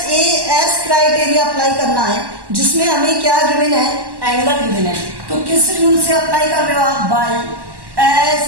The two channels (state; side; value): late; left; 1.1 ms